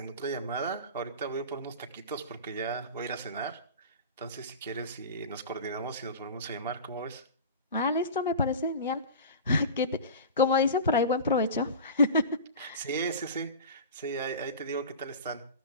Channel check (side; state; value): both; inverted; correlation -0.32